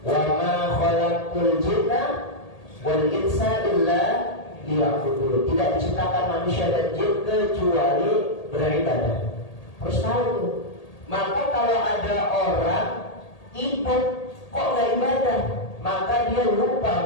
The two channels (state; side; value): late; right; 1.8 ms